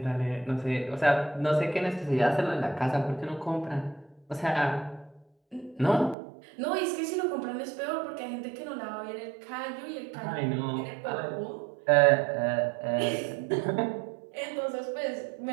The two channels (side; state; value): left; drops out; at 6.2 s